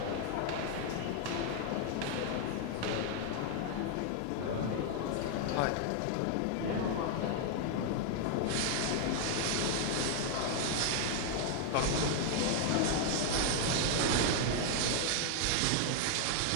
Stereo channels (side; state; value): both; different; correlation 0.00